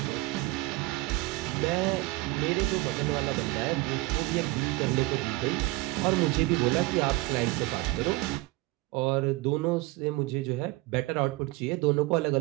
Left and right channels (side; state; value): left; quieter; 21.0 dB